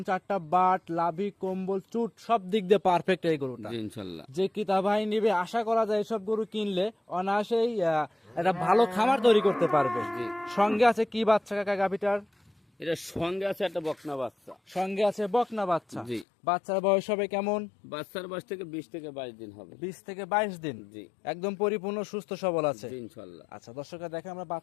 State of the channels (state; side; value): drops out; right; at 16.2 s